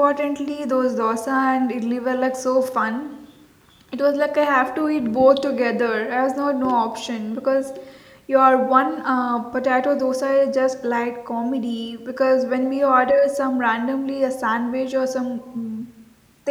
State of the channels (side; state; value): both; identical; correlation 1.00